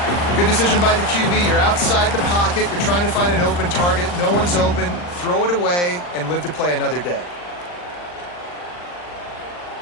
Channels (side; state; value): right; late; 40 ms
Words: Good decision by the QB. You're outside the pocket. You're trying to find an open target. No one's open. Throw it away and live to play another day.